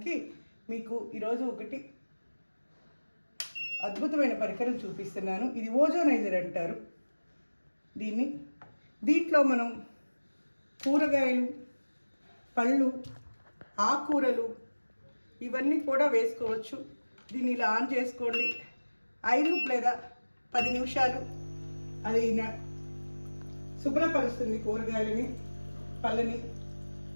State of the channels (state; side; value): inverted; both; correlation -1.00